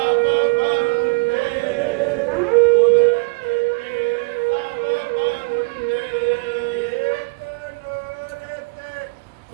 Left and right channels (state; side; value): quieter; left; 29.7 dB